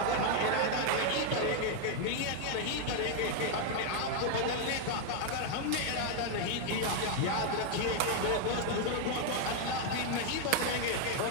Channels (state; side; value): different; both; correlation 0.00